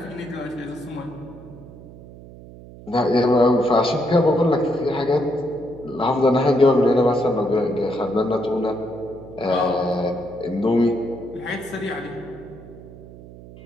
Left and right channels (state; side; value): noise; right; hum, 18 dB below the sound